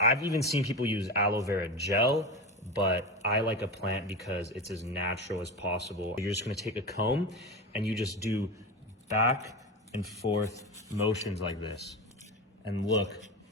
even seen people use aloe vera gel, but I like a plant because it's as natural as possible. You're just gonna take a comb and you just do back and forth motions like this. And look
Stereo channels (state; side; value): normal; both; correlation 0.22